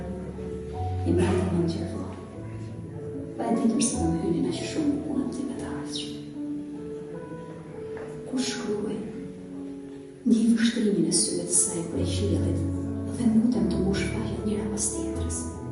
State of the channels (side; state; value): both; identical; correlation 1.00